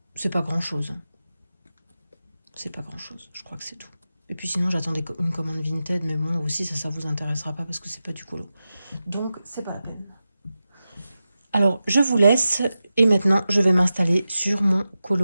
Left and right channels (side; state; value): both; inverted; correlation -0.93